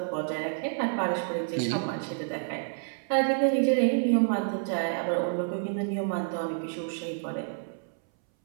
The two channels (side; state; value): left; silent; 59 dB below the other